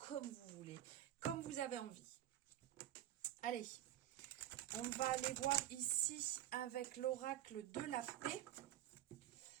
vous voulez, comme vous avez envie. Allez, on va aller voir ici avec l'oracle de la paix.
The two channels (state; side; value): quieter; left; 13.0 dB